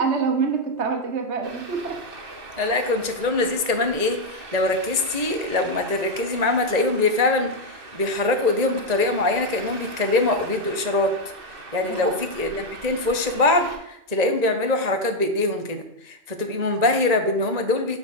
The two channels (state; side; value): late; left; 1.9 ms